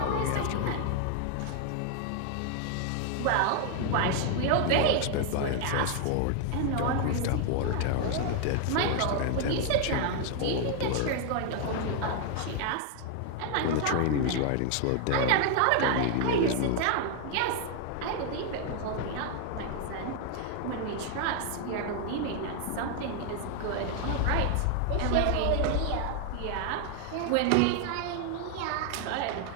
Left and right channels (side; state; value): both; different; correlation 0.00